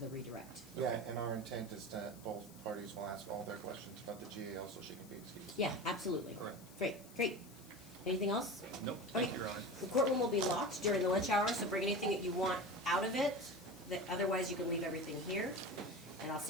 the redirect. yeah, and our intent is that both parties will ask all their questions about the GAL so she can be excused. Yeah, absolutely. Correct. Great. Anything else? Nope, thank Okay. you, Your Honor. The courtroom will be locked during the lunch hour, so bring anything that you want out of it, that otherwise you can leave everything here. And I'll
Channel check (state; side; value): noise; left; hiss, 21 dB below the sound